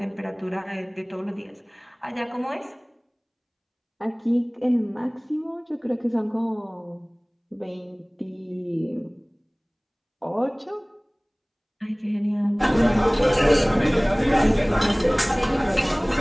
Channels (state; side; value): identical; both; correlation 1.00